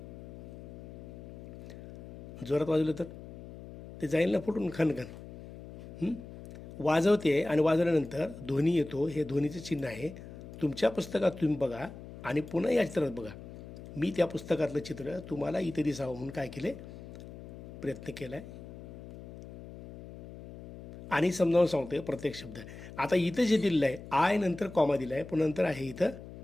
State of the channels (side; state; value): left; noise; hum, 14 dB below the sound